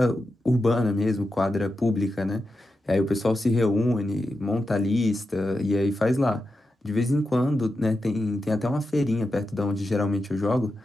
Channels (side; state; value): both; normal; correlation 0.89